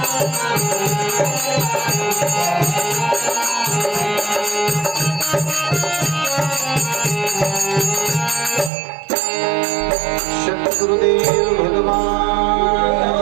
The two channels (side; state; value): left; drops out; at 8.7 s